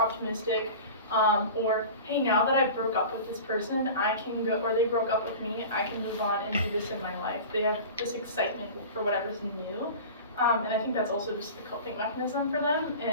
or hey, now that I broke up with this person, I can go, or they broke up with me, I can move on and do this in my life. They have this excitement for whatever's new, and I think that's also just a coping mechanism for them,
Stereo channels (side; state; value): both; inverted; correlation -0.35